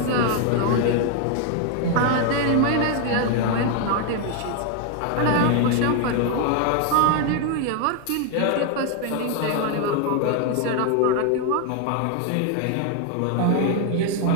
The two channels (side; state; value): both; different; correlation 0.00